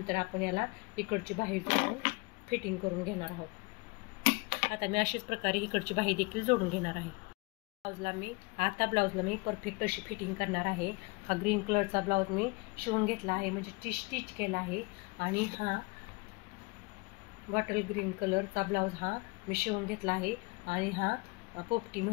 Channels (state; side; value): quieter; right; 27.6 dB